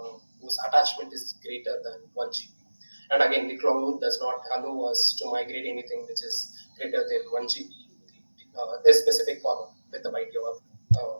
whose attachment is greater than 1 GB. And again, the cloud does not allow us to migrate anything which is greater than 1 GB, this specific column with the byte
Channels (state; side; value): inverted; both; correlation -1.00